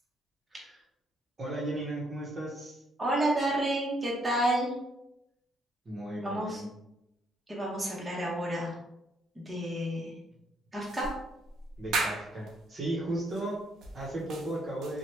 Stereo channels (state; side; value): normal; both; correlation 0.70